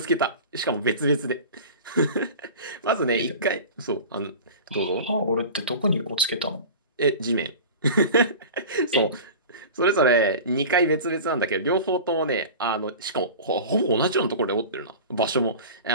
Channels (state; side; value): inverted; both; correlation -0.35